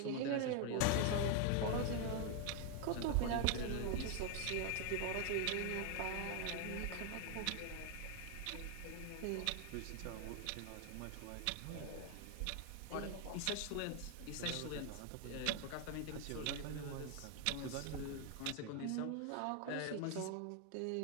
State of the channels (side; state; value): both; different; correlation 0.00